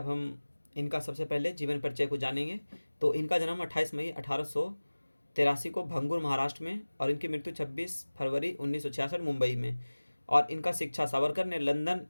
हम इनका सबसे पहले जीवन परिचय को जानेंगे। तो इनका जन्म 28 मई 1883 को भंगूर महाराष्ट्र में, और इनकी मृत्यु 26 फरवरी 1966 मुंबई में। और इनका शिक्षा, सावरकर ने लंदन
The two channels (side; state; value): both; inverted; correlation -1.00